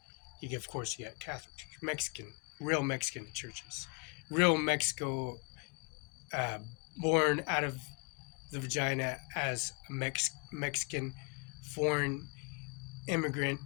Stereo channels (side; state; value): right; quieter; 33.7 dB